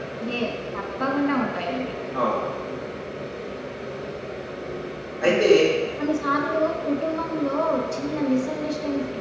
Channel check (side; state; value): both; identical; correlation 1.00